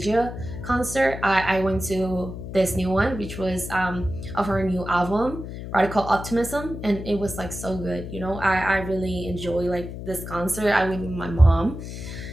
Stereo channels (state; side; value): noise; left; hum, 9 dB below the sound